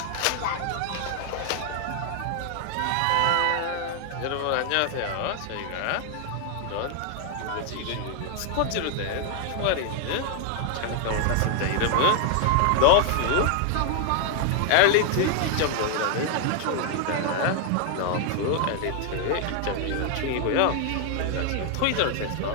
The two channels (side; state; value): both; different; correlation 0.00